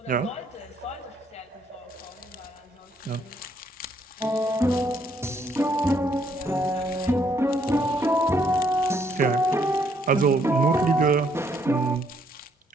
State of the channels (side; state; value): both; normal; correlation 0.70